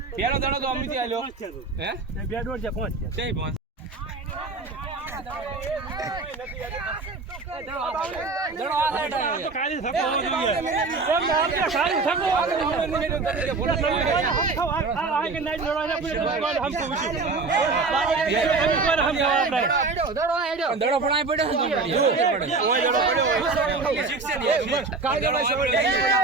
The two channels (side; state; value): left; quieter; 4.0 dB